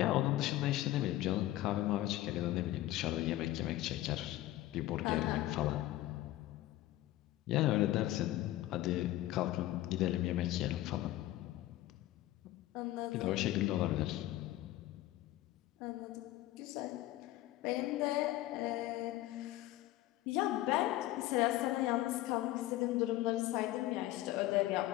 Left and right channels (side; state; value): right; quieter; 15.6 dB